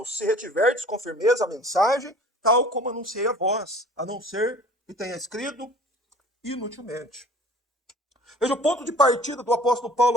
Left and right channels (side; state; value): both; normal; correlation 0.47